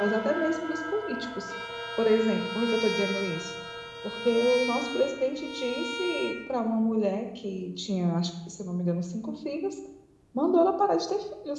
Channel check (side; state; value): both; identical; correlation 1.00